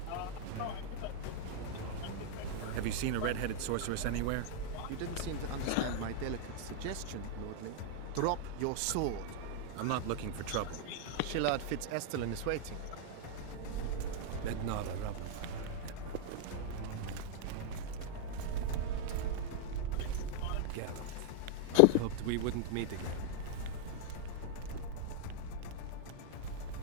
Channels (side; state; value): both; different; correlation 0.00